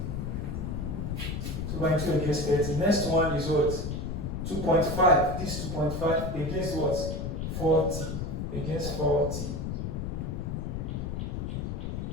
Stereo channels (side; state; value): left; noise; rumble, 3 dB below the sound